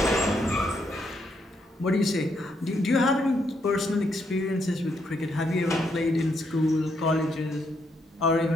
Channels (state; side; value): normal; both; correlation 0.76